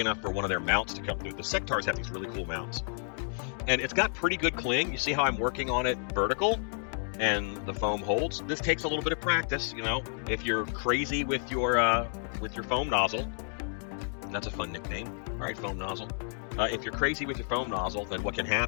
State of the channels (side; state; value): right; silent; 57 dB below the other